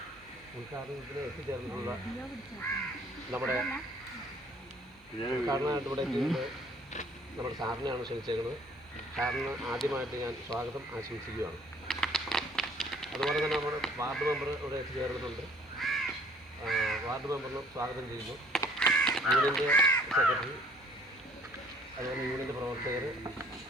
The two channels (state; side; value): normal; both; correlation 0.57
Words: ഉദ്ഘാടനത്തിന് എത്തിച്ചേർന്നിട്ടുള്ള നമ്മുടെ ഉദ്ഘാടനമായിട്ട് ഇവിടെ എത്തിയത് നമ്മുടെ സാറിനെയാണ് ക്ഷണിച്ചേക്കുന്നത്. സാറിന് ആദ്യമായിട്ട് ഞാൻ സ്വാഗതം ആശംസിക്കുകയാണ്. അതുപോലെ തന്നെ നമ്മുടെ വാർഡ് മെമ്പർ ഇവിടെ എത്തിച്ചേർന്നിട്ടുണ്ട്. വാർഡ് മെമ്പറിനും സ്വാഗതം ചെയ്യുന്നു. യൂണിയൻ്റെ സെക്രട്ടറി, അതുപോലെ യൂണിയൻ്റെ പ്രവർത്തകർ